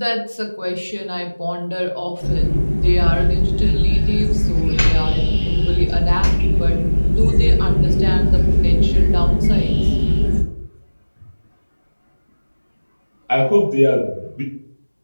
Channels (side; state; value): both; inverted; correlation -1.00